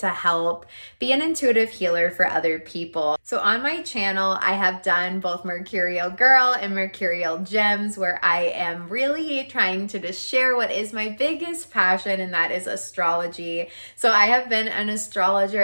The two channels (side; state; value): both; inverted; correlation -1.00